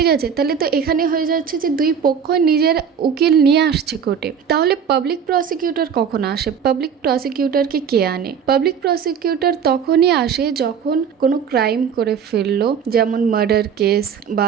আছে, তাহলে তো এখানে হয়ে যাচ্ছে যে দুই পক্ষ নিজের উকিল নিয়ে আসছে কোর্টে। তাহলে পাবলিক প্রসিকিউটর কখন আসে? পাবলিক প্রসিকিউটরকে কে আনে? পাবলিক প্রসিকিউটর তখনই আসে যখন কোনো ক্রাইম করে ফেললো, যেমন মার্ডার কেস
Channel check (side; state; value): left; quieter; 7.4 dB